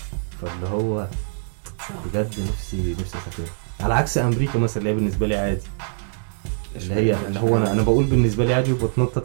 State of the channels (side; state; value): left; silent; 63 dB below the other